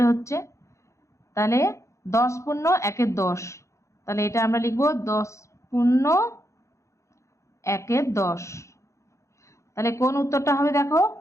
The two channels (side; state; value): right; late; 0.14 ms